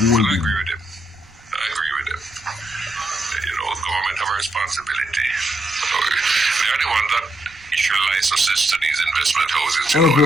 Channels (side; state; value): right; noise; rumble, 27 dB below the sound